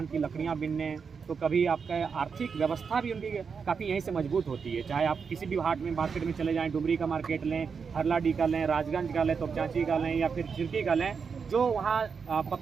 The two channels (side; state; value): left; quieter; 5.9 dB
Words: की लकड़ियाँ बीनने, तो कभी आपका आर्थिक व्यवस्था भी उनकी काफ़ी यहीं से मजबूत होती है। चाहे आप किसी भी हाट में मार्केट में चले जाएं, डुमरी का मार्केट लें, हरलाडी का लें, राजगंज का लें, तोपचाची का लें या फिर चिरकी का लें, जो वहाँ